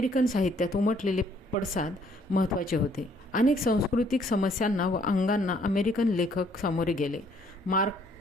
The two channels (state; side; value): normal; both; correlation 0.64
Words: साहित्यात उमटलेले पडसाद महत्त्वाचे होते. अनेक सांस्कृतिक समस्यांना व अंगांना अमेरिकन लेखक सामोरे गेले. मार्क